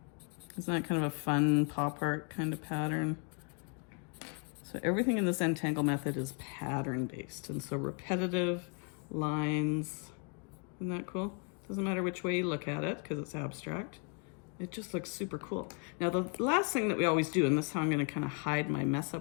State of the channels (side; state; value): right; quieter; 36.6 dB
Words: Isn't that kind of a fun pop art kind of pattern? So everything in the Zentangle method is pattern based. And so repetitive lines, isn't that cool? Doesn't matter which way you look at it because it's abstract. It just looks super cool. Now the last thing that we always do, and this is how I'm gonna kind of hide my mess